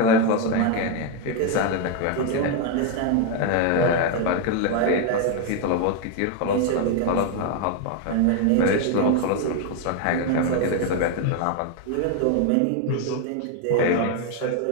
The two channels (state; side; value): different; both; correlation 0.01